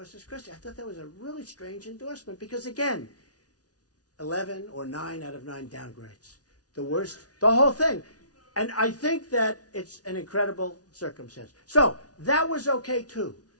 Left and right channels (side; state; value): right; late; 0.68 ms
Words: Christie. I thought that was a really strange endorsement because, again, 11 or 9 out of 9 downgrades. The worst, the whole thing. And I think that it's an incredible circumstance. So that was okay too.